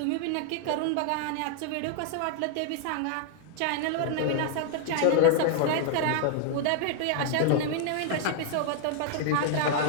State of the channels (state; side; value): different; both; correlation 0.00